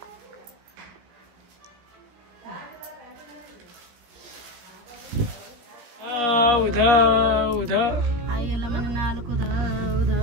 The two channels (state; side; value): late; left; 17 ms